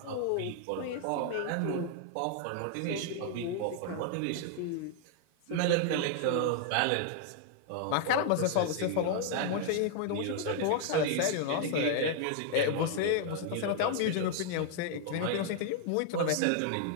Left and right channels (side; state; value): both; different; correlation 0.00